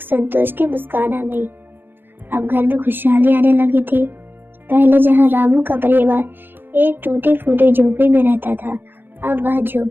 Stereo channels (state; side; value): late; left; 0.099 ms